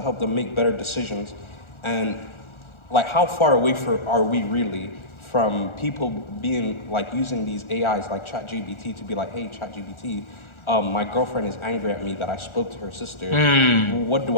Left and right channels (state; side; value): late; right; 1.4 ms